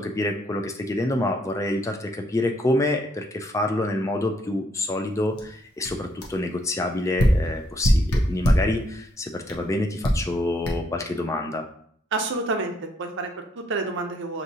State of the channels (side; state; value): both; normal; correlation 0.71